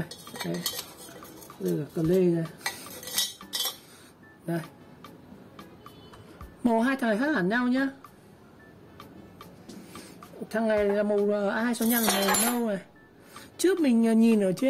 đây. Đây là cờ lê này. Đây. Màu hai thằng này khác hẳn nhau nhá. Thằng này là màu A265 này nâu này. Trước mình nhìn ở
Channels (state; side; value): identical; both; correlation 1.00